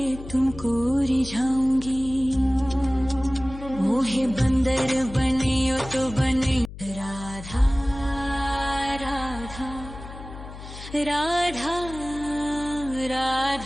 तुमको रिझाऊंगी। मोहे बंदर बनियो तो बनियो राधा राधा राधा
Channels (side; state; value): left; noise; hum, 13 dB below the sound